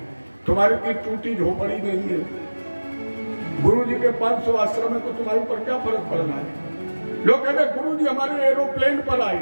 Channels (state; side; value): inverted; both; correlation -1.00